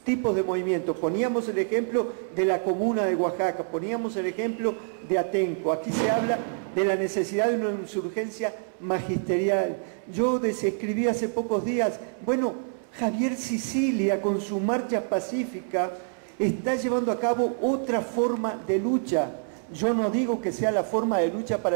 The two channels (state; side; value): silent; left; 60 dB below the other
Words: tipos de movimientos. Poníamos el ejemplo de la comuna de Oaxaca, poníamos el ejemplo de Atenco. Aquí se habla de la necesidad de una insurgencia magisterial. Yo describí hace pocos días, bueno, Javier Sicilia con su marcha pacífica está llevando a cabo otra forma de lucha. Yo no digo que sea la forma de lucha